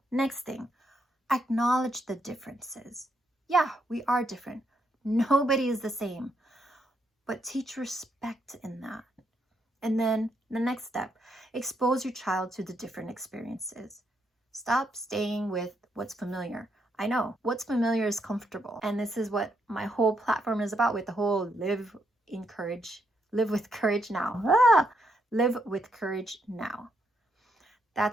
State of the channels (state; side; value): normal; both; correlation 0.77